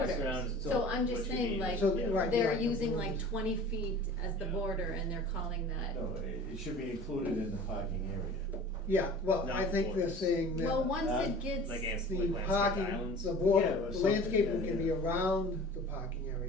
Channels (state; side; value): normal; both; correlation 0.42